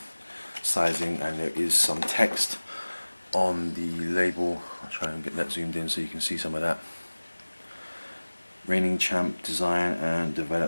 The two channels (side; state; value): both; inverted; correlation -1.00